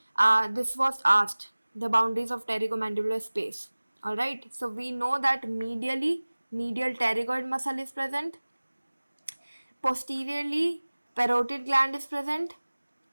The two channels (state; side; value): inverted; both; correlation -1.00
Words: this was asked, the boundaries of pterygomandibular space. All right, so we know that medially, medial pterygoid muscle is present, posteriorly parotid gland is present,